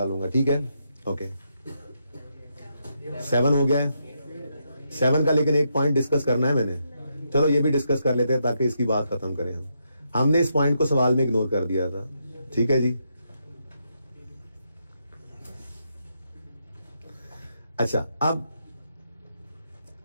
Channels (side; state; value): both; inverted; correlation -0.80